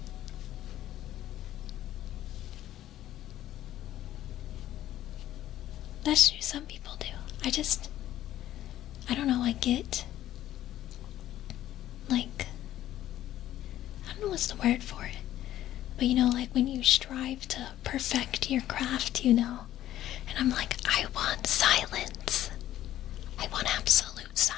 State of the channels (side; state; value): right; quieter; 13.1 dB